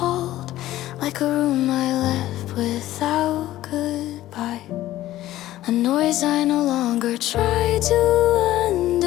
Like a room I left without goodbye. A noise I no longer try to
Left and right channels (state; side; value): quieter; right; 14.7 dB